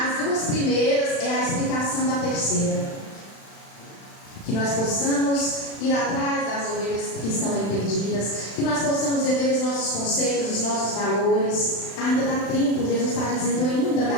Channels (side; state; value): right; late; 36 ms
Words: 2 duas primeiras é a explicação da terceira. Que nós possamos ir atrás das ovelhas que estão aí perdidas, que nós possamos rever os nossos conceitos, os nossos valores. Ainda dá tempo, Jesus está dizendo, ainda